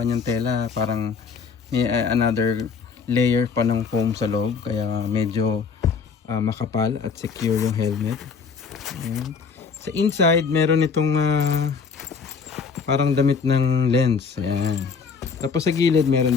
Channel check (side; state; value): right; quieter; 5.6 dB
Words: tela. Parang may another layer pa ng foam sa loob. Kaya medyo makapal at secure yung helmet. Ayan. Sa inside meron itong parang damit ng lens. Ayan. Tapos sa gilid meron